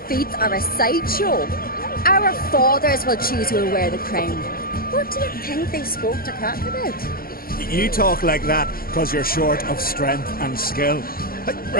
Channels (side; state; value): right; late; 0.43 ms